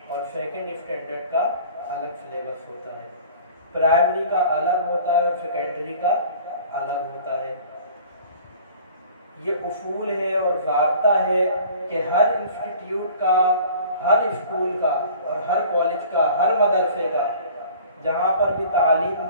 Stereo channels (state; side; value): inverted; both; correlation -0.47